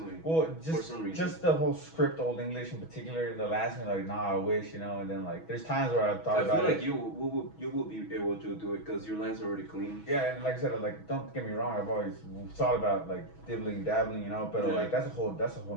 Well, for some reason. Just the whole script, Old English in particular. They'll ask me like, nah, I wish, you know. And then like, there's times where I've thought about it. I feel like you will be able to do it because your lines are already clean. Yeah, and like I said, like don't get me wrong, I've always thought about like dibbling, dabbling, you know. But like that's a whole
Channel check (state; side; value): late; right; 6.2 ms